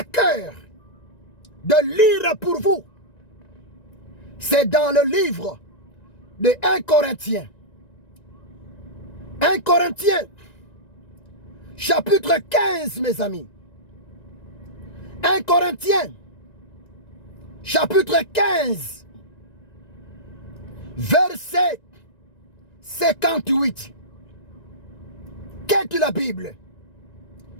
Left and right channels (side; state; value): right; late; 1.9 ms